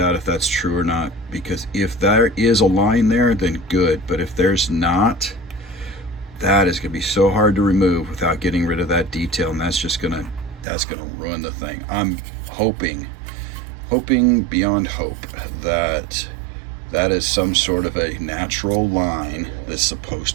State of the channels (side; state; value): left; drops out; at 10.7 s